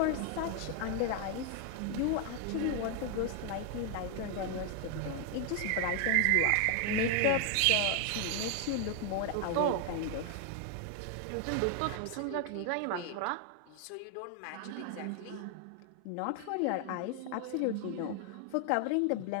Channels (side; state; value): both; different; correlation 0.00